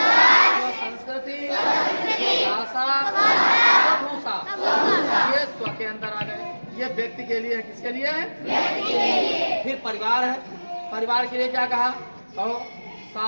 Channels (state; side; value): inverted; both; correlation -1.00